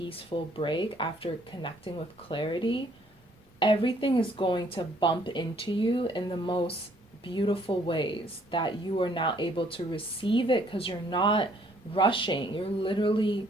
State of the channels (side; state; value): both; normal; correlation 0.63